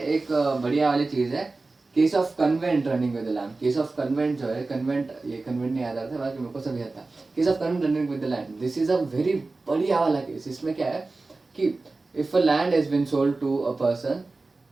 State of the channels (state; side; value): quieter; left; 3.5 dB